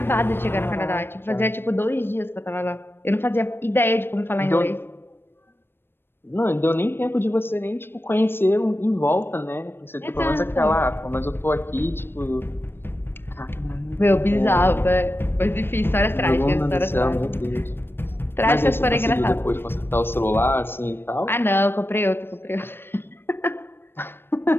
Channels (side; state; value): right; late; 0.10 ms